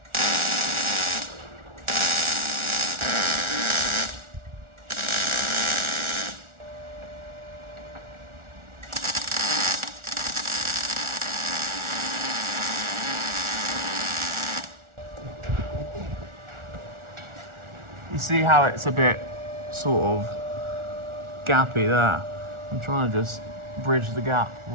You see how it's a bit sort of gappy there? I'm trying to just bridge the gap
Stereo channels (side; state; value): left; late; 1.4 ms